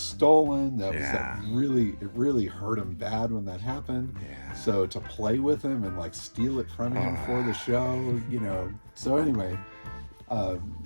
That really hurt him bad when that happened. Yeah. So to play with him and like steal it from him for the show, So anyway,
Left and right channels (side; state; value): both; inverted; correlation -1.00